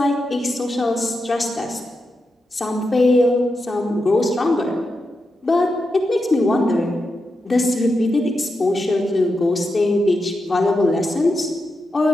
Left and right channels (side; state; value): both; normal; correlation 0.87